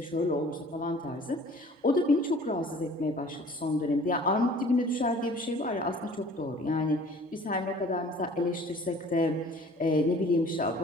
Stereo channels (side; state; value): both; normal; correlation 0.50